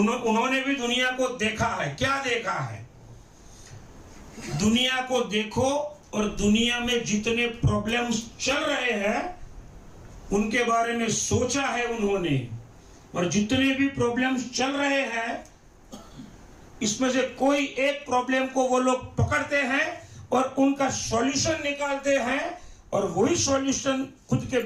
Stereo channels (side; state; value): both; identical; correlation 1.00